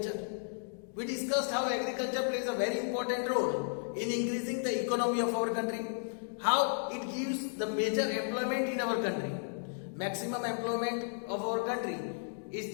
We discussed how agriculture plays a very important role in increasing the economy of our country, how it gives the major employment in our country. Maximum employment of our country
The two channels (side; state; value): right; silent; digital silence